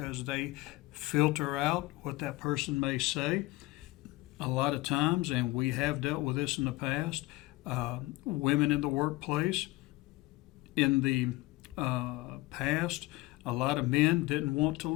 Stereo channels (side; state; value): right; quieter; 20.5 dB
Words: they filter out what that person may say. A lot of times, and we have dealt with this in the past, women in the workplace, in the past, a lot of men didn't want to